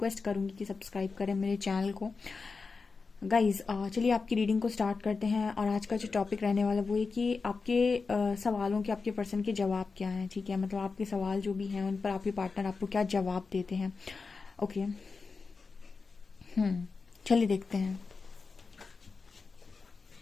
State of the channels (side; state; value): right; quieter; 4.5 dB